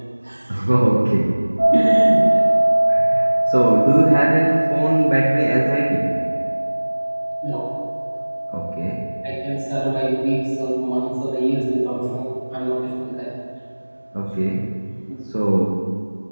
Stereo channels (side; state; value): both; inverted; correlation -1.00